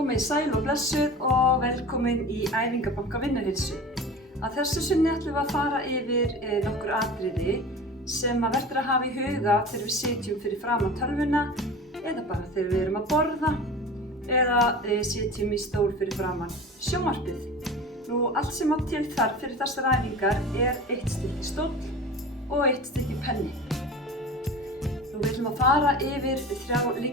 sæl og blessuð og velkomin í Æfingabanka Vinnuheilsu. Að þessu sinni ætlum við að fara yfir nokkur atriði sem verður að hafa í huga þegar við sitjum fyrir framan tölvuna eða bara þegar við erum að borða eða sitjum í stól fyrir framan sjónvarpið. Allt sem á til þarf fyrir þessar æfingar eitt stykki stóll og eitt stykki penni. Við ætlum að fara yfir 3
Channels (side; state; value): both; normal; correlation 0.35